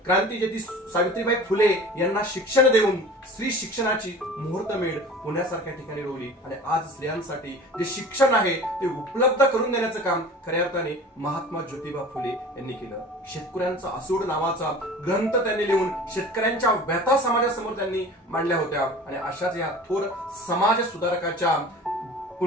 क्रांतीज्योती सावित्रीबाई फुले यांना शिक्षण देऊन स्त्री शिक्षणाची मुहूर्तमेढ पुण्यासारख्या ठिकाणी रोवली आणि आज स्त्रियांसाठी जे शिक्षण आहे ते उपलब्ध करून देण्याचं काम खऱ्या अर्थाने महात्मा ज्योतिबा फुले यांनी केलं। शेतकऱ्यांचा असूड नावाचा ग्रंथ त्यांनी लिहून शेतकऱ्यांच्या व्यथा समाजासमोर त्यांनी मांडल्या होत्या आणि अशाच या थोर समाज सुधारकाच्या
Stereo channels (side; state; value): both; normal; correlation 0.40